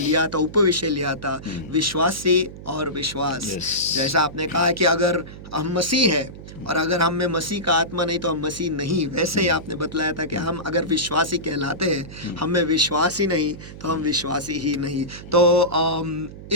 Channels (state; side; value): noise; right; hum, 14 dB below the sound